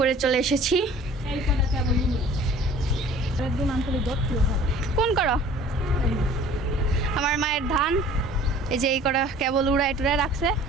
চলে এসেছি। এই কটা কেবল নিয়ে একদম আন্তরিক দত্ত কোন করো? আমার মায়ের ধান, এই যে এই কটা কেবল উড়ায় টুড়ায় রাখছে।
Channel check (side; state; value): both; normal; correlation 0.48